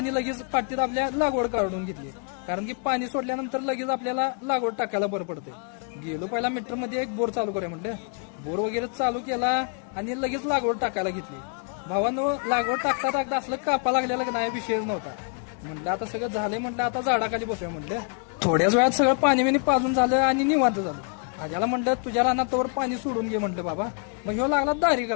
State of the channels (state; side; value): quieter; right; 37.8 dB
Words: लगेच पाटीत आपल्या लागवड काढून घेतली, कारण की पाणी सोडल्यानंतर लगेच आपल्याला लागवड टाकायला बरं पडते. गेलो पहिला मीटर मध्ये एक बोर चालू करूया म्हटलं. बोर वगैरे चालू केला आणि लगेच लागवड टाकायला घेतली. भावानो, लागवड टाकता टाकता असलं कापा लागलेलं नाही, विषयच नव्हता. म्हटलं आता सगळं झालंय, म्हटलं आता झाडाखाली बसूया म्हटलं. थोड्याच वेळात सगळं पाणी बिणी पाजून झालं आणि निवांत झालं. आज्याला म्हटलं तुझ्या रानात तोवर पाणी सोडून घे म्हटलं बाबा. मग ह्यो लागला दारी